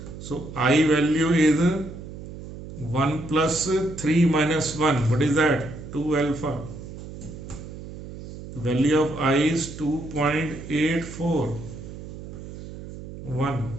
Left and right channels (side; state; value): right; noise; hum, 12 dB below the sound